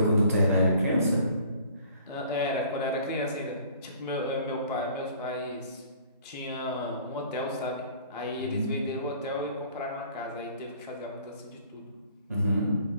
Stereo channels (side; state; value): both; inverted; correlation -0.53